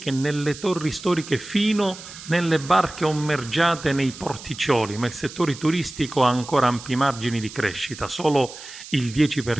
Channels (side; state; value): right; noise; hiss, 15 dB below the sound